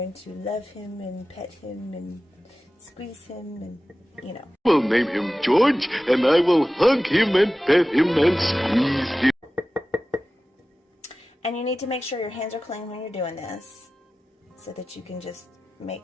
to love him and pet him and squeeze him, and you know. We'll name him George, and I will hug him and pet him and squeeze him. And you need to make sure your hands are clean when you're doing this, so that you can just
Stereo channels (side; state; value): both; normal; correlation 0.95